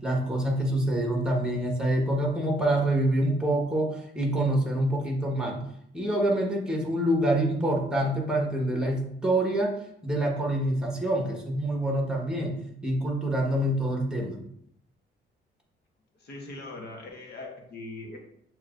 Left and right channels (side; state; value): both; normal; correlation 0.69